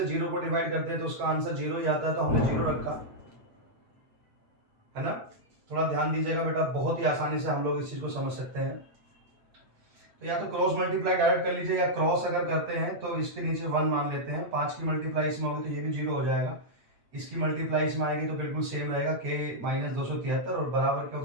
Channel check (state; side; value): late; left; 8.5 ms